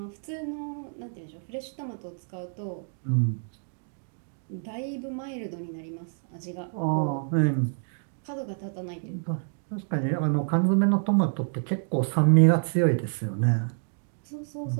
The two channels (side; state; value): left; silent; 59 dB below the other